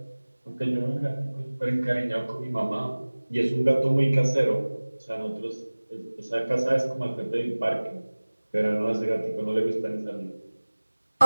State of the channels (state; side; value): inverted; both; correlation -1.00